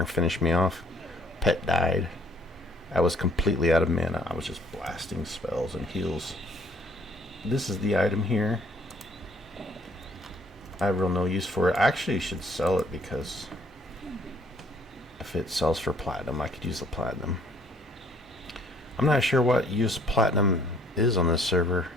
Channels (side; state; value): both; normal; correlation 0.61